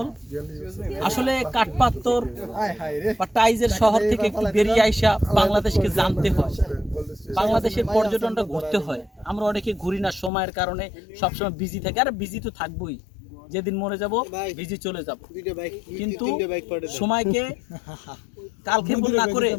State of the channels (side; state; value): right; drops out; at 10.3 s